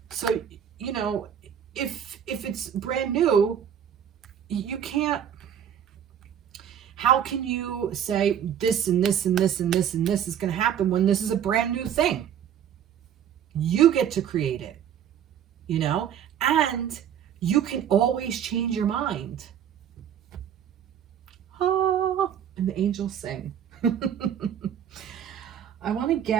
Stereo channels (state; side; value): quieter; left; 9.1 dB